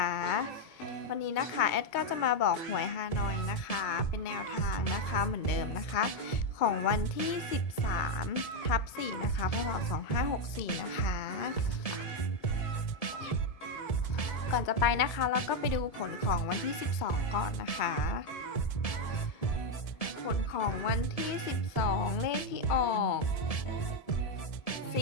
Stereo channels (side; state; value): right; late; 1.7 ms